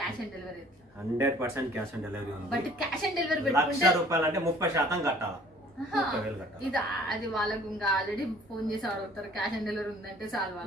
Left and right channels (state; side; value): normal; both; correlation 0.53